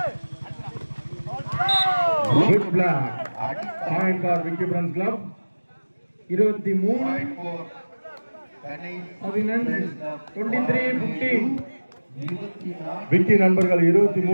Good block. Point for Vicky Friends Club 23-15. Vicky நண்பர்கள்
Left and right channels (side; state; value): both; inverted; correlation -1.00